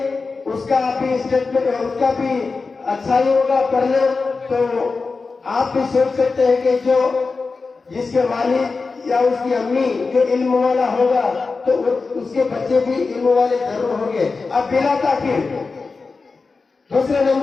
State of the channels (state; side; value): quieter; right; 4.2 dB